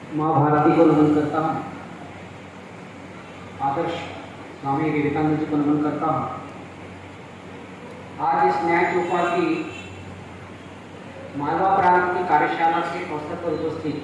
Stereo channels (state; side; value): identical; both; correlation 1.00